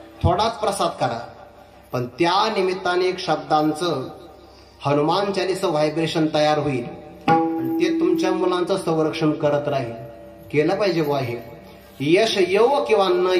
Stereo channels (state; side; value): identical; both; correlation 1.00